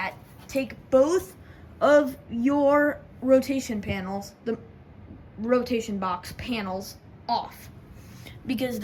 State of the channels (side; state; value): both; identical; correlation 1.00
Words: take both of your rotation panels, the rotation box panels, off. Because